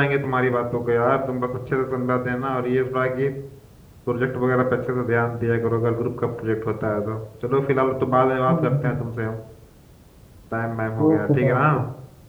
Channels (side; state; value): both; identical; correlation 1.00